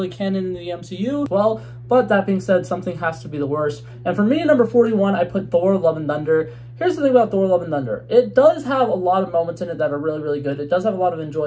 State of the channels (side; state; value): both; identical; correlation 1.00